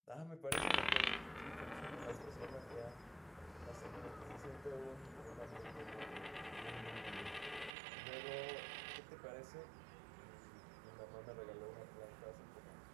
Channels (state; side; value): drops out; left; at 7.7 s